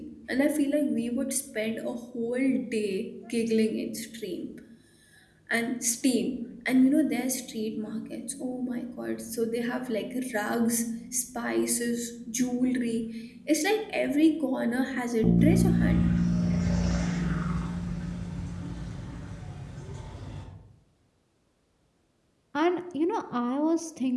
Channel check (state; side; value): identical; both; correlation 1.00